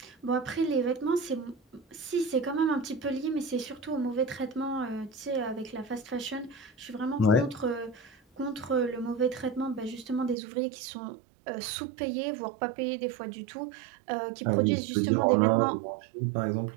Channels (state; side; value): drops out; left; at 10.4 s